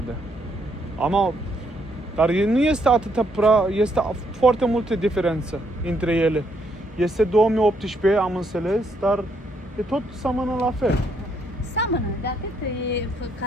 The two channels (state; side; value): normal; both; correlation 0.73